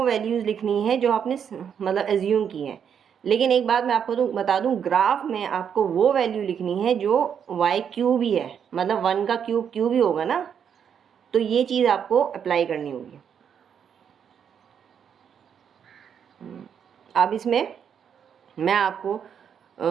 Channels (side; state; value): left; quieter; 7.9 dB